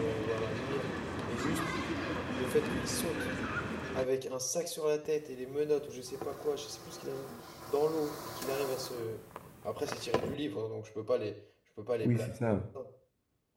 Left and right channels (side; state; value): both; identical; correlation 1.00